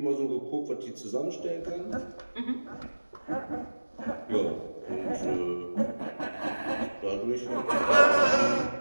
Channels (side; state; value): both; inverted; correlation -1.00